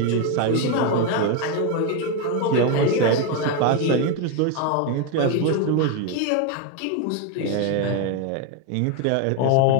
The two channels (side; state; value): both; different; correlation 0.02